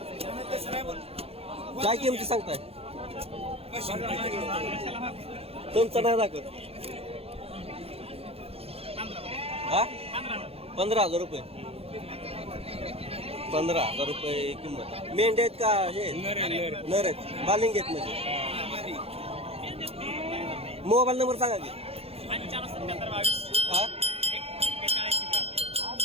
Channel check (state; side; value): late; left; 0.29 ms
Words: काय किमती सांगताय? तुमचं नाही दाखवत. हा 15,000 रुपये. 15,000 रुपये किंमत. मेंढ्या आहेत का हे नर आहेत? बालिंग आहेत म्हणजे. मोबाईल नंबर सांगा की. हा